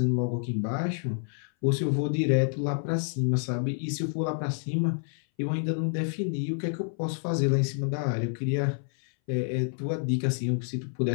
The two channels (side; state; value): right; silent; 58 dB below the other